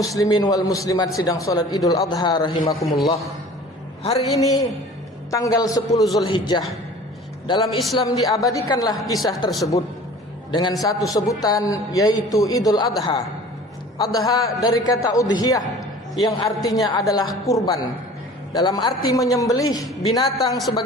wal muslimat sidang salat Idul Adha rahimakumullah. Hari ini tanggal 10 Zulhijjah. Dalam Islam diabadikanlah kisah tersebut dengan satu sebutan, yaitu Idul Adha. Adha dari kata udhiyah yang artinya adalah kurban, dalam arti menyembelih binatang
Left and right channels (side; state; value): both; normal; correlation 0.45